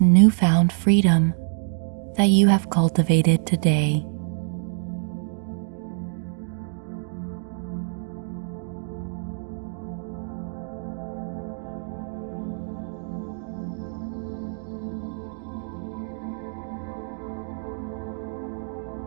newfound freedom that you have cultivated today.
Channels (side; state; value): left; silent; digital silence